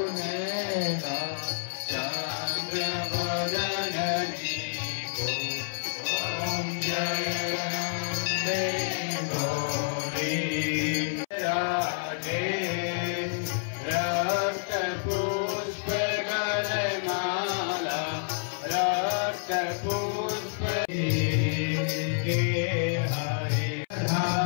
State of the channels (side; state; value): right; silent; 59 dB below the other